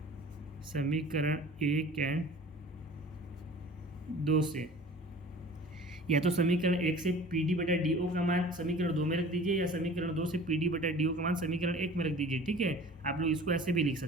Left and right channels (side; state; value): both; normal; correlation 0.44